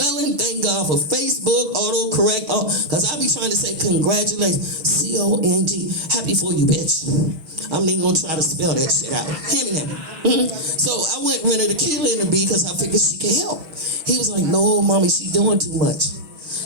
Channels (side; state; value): left; late; 6.3 ms